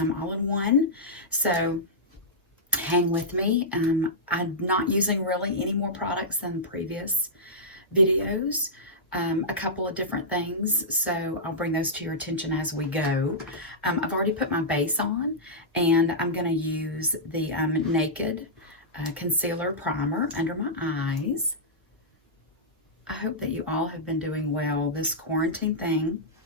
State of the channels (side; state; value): both; normal; correlation -0.12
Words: all in one. So hang with me. I'm not using really any more products than previous videos. A couple of different things, so I'll bring those to your attention as we go. I've already put my base on, and I'm going to use the Naked Concealer Primer under my eyes. I hope that you all have been doing well. This quarantine thing